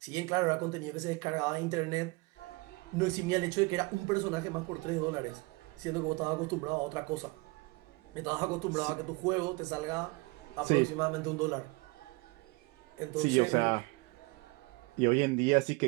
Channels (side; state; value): left; quieter; 25.5 dB